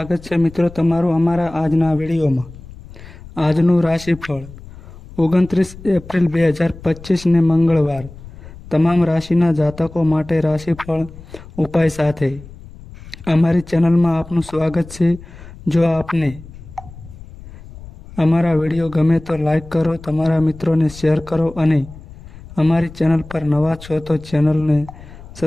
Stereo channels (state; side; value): noise; left; rumble, 18 dB below the sound